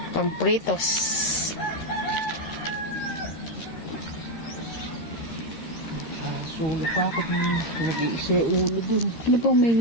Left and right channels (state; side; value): late; right; 13 ms